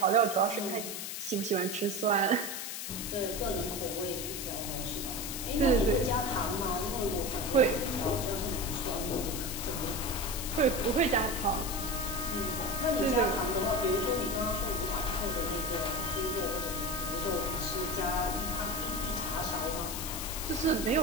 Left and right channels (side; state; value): left; noise; hiss, 5 dB below the sound